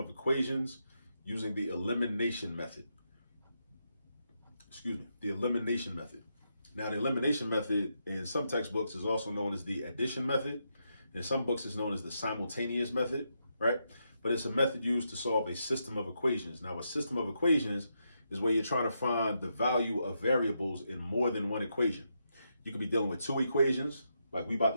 equations using the elimination method. The elimination method. Now, the elimination method in some textbooks is also known as the addition method. In some books, it's known as the simultaneous method, right? But it's a method used to solve a system of equations. Now, a system of equations is where you're trying to find the value of variables in more than one equation. You could be dealing with two equations, like we about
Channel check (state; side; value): inverted; both; correlation -0.82